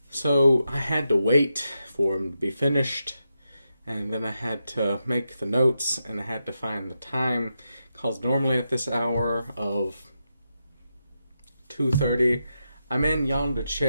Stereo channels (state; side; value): inverted; both; correlation -0.87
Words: So I had to wait for them to be finished, and then I had to make the notes, and I had to find the time. Because normally at this hour of 2:30, I'm in yonder